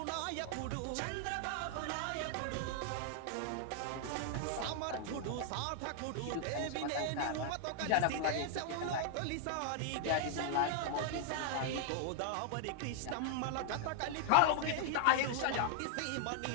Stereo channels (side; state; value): both; different; correlation 0.00